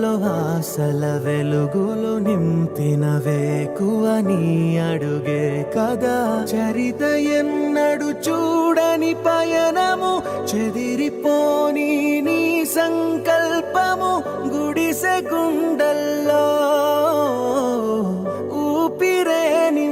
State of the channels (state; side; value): identical; both; correlation 1.00